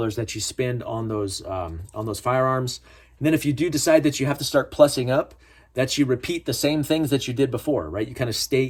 that you spend on those firearms. And then if you do decide that you have to start plussing up, that you repeat the same things that you did before, right? You kind of stay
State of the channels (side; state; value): both; identical; correlation 1.00